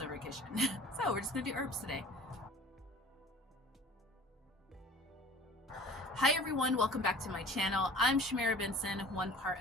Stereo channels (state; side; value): normal; both; correlation 0.45